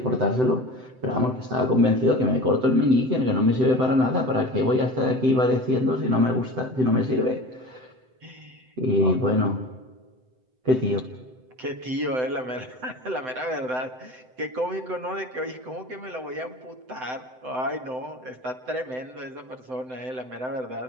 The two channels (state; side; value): late; left; 7.8 ms